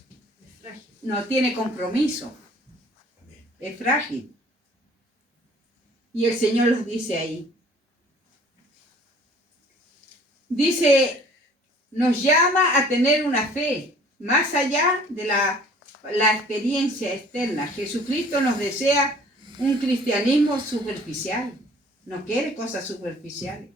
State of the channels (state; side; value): normal; both; correlation 0.53